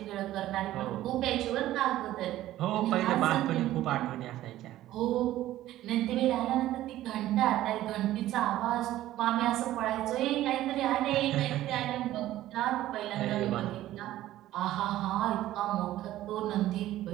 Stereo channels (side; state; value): left; quieter; 14.4 dB